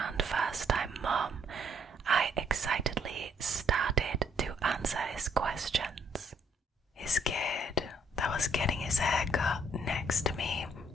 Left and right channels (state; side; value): normal; both; correlation 0.67